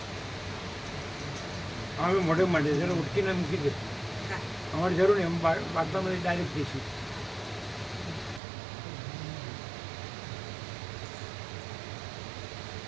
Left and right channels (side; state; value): left; drops out; at 8.4 s